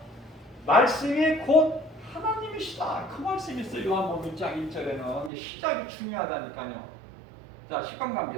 말씀이 곧 하나님이시다. 그 말씀이 있어요. 요한복음 1장 1절에는 시작이 중요하다니까요. 자,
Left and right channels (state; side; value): drops out; left; at 5.3 s